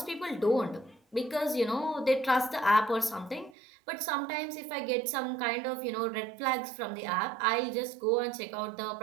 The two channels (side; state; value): left; drops out; at 3.6 s